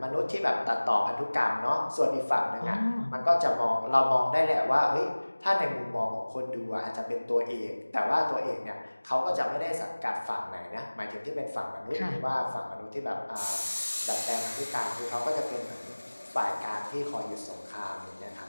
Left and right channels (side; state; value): both; inverted; correlation -1.00